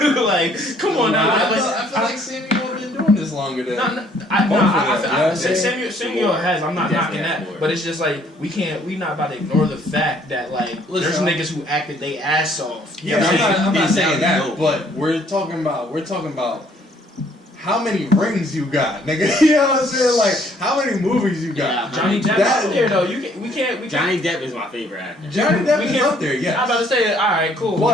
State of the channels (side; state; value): both; normal; correlation 0.63